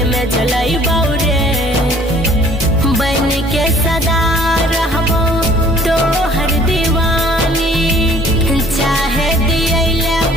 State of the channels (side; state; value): both; normal; correlation 0.55